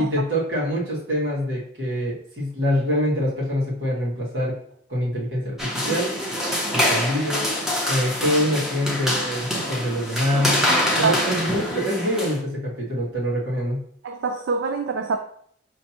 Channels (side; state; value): both; normal; correlation 0.32